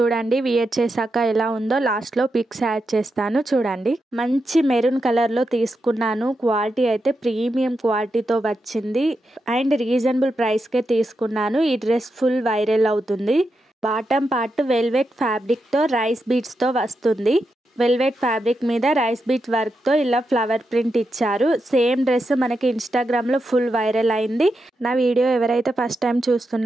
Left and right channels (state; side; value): normal; both; correlation 0.86